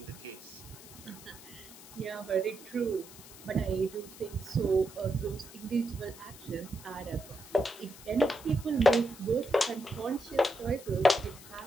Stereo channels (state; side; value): noise; left; hiss, 17 dB below the sound